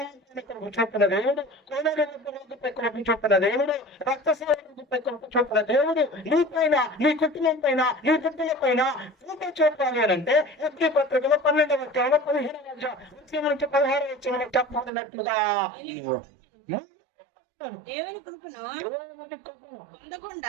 కృప చూపిన దేవుడు, కోనేరు రోగిపై కృప చూపిన దేవుడు, రక్తస్రావ రోగిపై కృప చూపిన దేవుడు నీపైన, నీ కుటుంబం పైన, నీ బిడ్డల పైన కృప చూపాలి అని అంటే హెబ్రీ పత్రికలో 12వ అధ్యాయంలో 15వ నుంచి 16వ వచనంలో చెప్పబడినట్లుగా దేవుని కృపను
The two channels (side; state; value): left; drops out; at 14.9 s